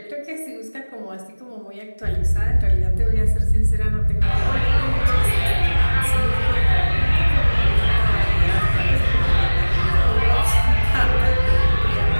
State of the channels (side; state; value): both; inverted; correlation -1.00